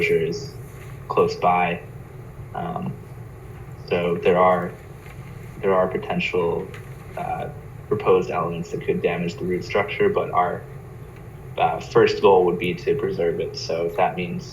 is close by. So there are potential proposed elements that could damage the root structure, but our first goal would be to preserve it. So if that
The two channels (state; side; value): identical; both; correlation 1.00